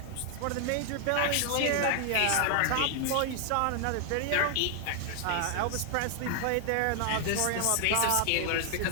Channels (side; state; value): both; different; correlation 0.00